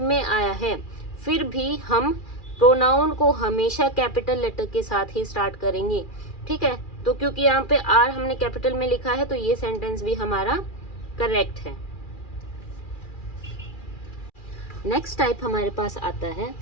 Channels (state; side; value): late; right; 2.4 ms